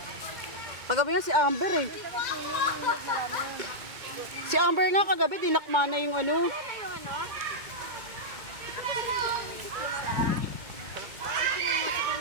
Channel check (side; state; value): left; late; 2.2 ms